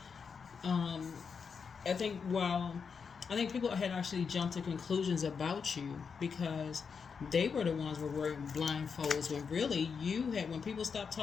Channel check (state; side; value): quieter; right; 5.9 dB